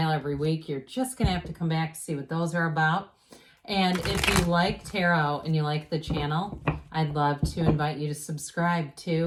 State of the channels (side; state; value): both; identical; correlation 1.00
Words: every week. You're just going to have to come back to see what those are about. And if you like tarot and you like the channel, I'd love to invite you to subscribe